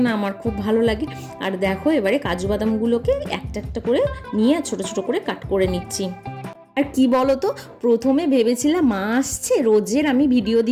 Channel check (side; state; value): both; identical; correlation 1.00